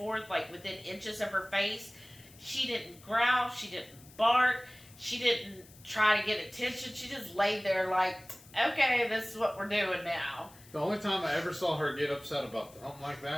like within inches of her face. She didn't growl, she didn't bark, she didn't try to get attention, she just laid there like, okay, this is what we're doing now. The only time I ever saw her get upset about something like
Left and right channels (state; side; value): noise; left; hiss, 23 dB below the sound